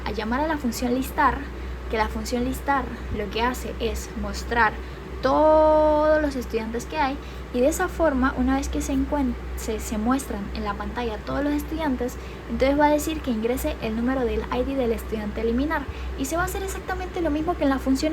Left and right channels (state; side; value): identical; both; correlation 1.00